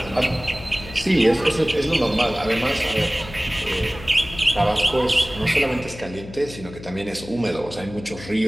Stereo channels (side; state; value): left; noise; hum, 15 dB below the sound